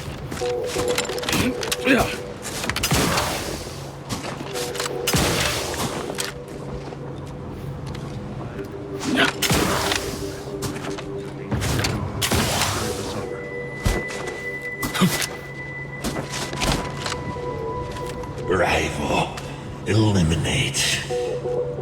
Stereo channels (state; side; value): identical; both; correlation 1.00